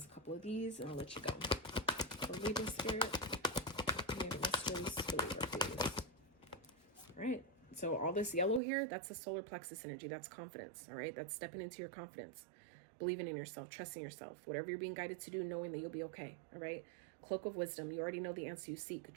a couple of these and I'll let you go. For Libra spirit, for Libra, please. All right. So all this yellow here, that's the solar plexus energy. That's confidence, all right? That's stepping into your confidence. Believing in yourself, trusting yourself, whatever you're being guided to do, knowing that you'll be okay, all right? Cloak of wisdom, you already know the answer you seek.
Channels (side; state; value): left; drops out; at 8.6 s